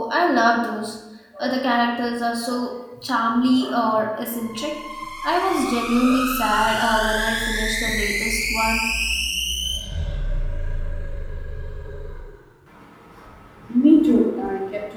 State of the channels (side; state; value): both; identical; correlation 1.00